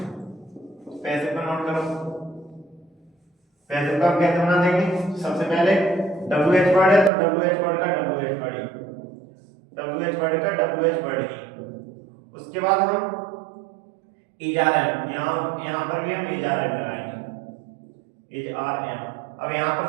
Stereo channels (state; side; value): drops out; left; at 7.1 s